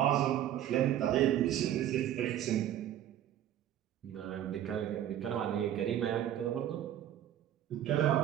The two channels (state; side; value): quieter; left; 11.6 dB